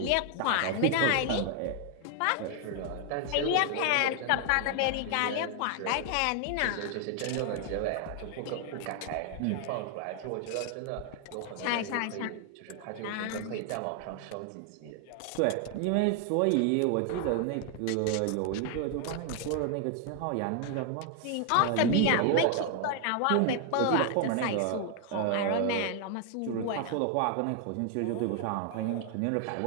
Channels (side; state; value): both; different; correlation 0.00